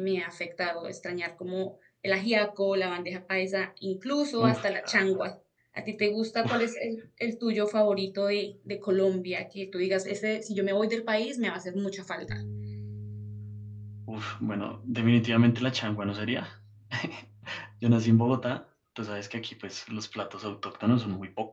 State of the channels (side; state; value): both; identical; correlation 1.00